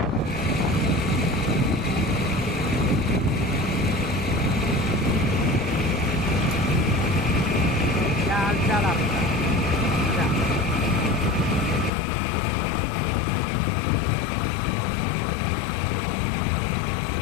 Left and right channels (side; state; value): right; drops out; at 11.9 s